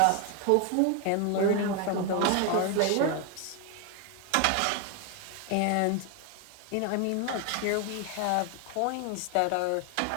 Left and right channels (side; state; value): both; different; correlation 0.01